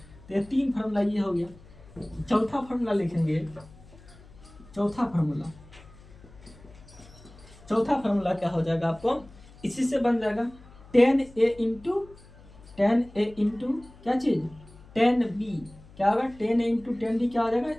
ये 3 फार्मूला ये हो गया। चौथा फार्मूला लिखेंगे। चौथा फार्मूला क्या हो जाएगा आपको इसी से बन जाएगा tan a इंटू क्या चीज tan b। क्या होगा tan a into tan b क्या हो जाएगा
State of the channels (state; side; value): noise; left; hum, 22 dB below the sound